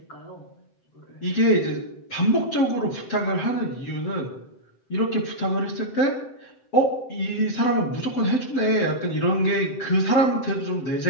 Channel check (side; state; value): right; late; 7.7 ms